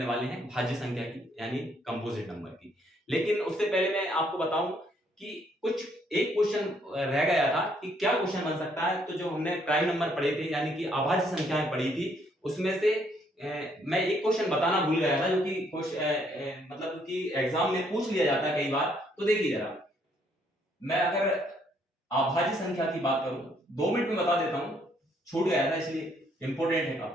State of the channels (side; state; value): both; normal; correlation 0.69